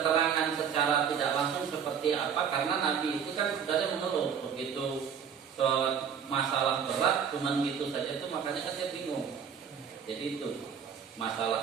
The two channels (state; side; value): quieter; left; 7.5 dB